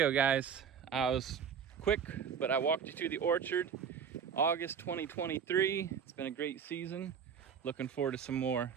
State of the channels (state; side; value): quieter; left; 7.2 dB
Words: guys. I was quick, but I walked you through the orchard. August 2023. It's been a great season. Looking forward to some more.